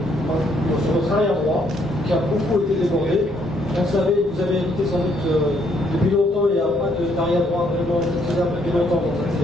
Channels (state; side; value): normal; both; correlation 0.70